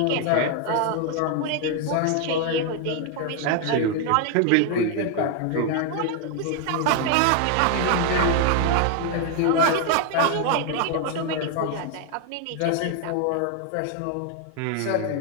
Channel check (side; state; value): both; different; correlation 0.00